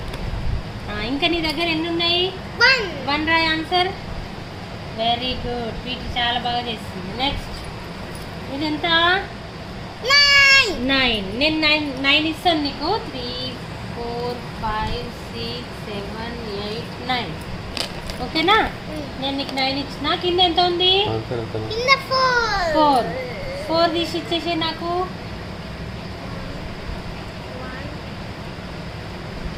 ఇంకా నీ దగ్గర ఎన్ని ఉన్నాయి? 1 రాయ్ ఆన్సర్. Very good. వీటి చాలా బాగా చేస్తుంది. నెక్స్ట్ ఇది ఎంత? 9. నేను 9 ఇస్తాను నీకు. 3 4 5 6 7 8 9. ఓకేనా? నేను నీకు 9 ఇచ్చిన. కింద ఎంత ఉంది? 4 తీసి ఇచ్చేసే నాకు.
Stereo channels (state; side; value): identical; both; correlation 1.00